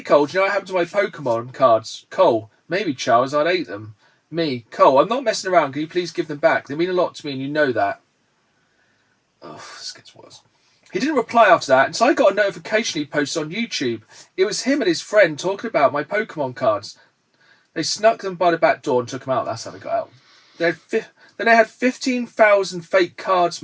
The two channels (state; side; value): identical; both; correlation 1.00